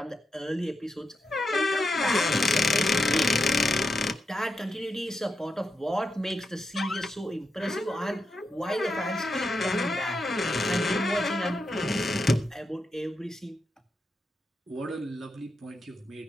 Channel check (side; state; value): both; normal; correlation 0.87